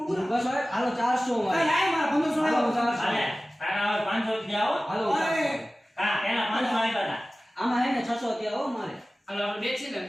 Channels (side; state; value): both; normal; correlation 0.97